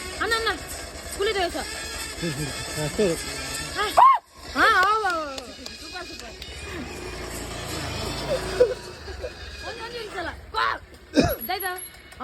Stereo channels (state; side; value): identical; both; correlation 1.00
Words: ಅನ್ನ ಅನ್ನ ಕುಳಿತ ವಯಸ್ಸ